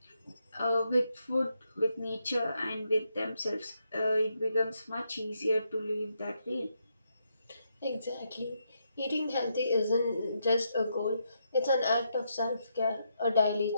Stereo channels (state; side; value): inverted; both; correlation -0.80